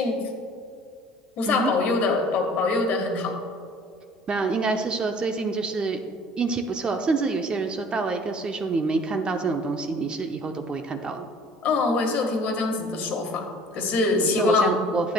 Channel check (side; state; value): both; normal; correlation 0.50